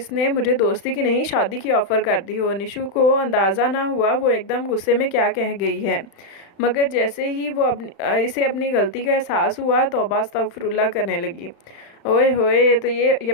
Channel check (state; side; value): late; right; 35 ms